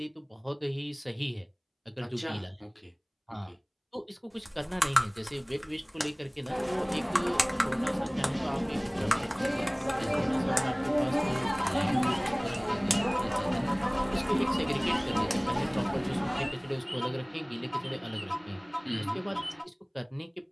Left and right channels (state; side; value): identical; both; correlation 1.00